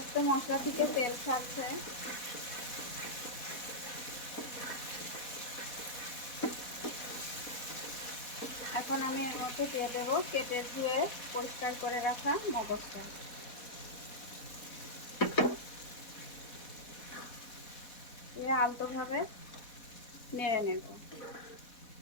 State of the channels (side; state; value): right; late; 4.1 ms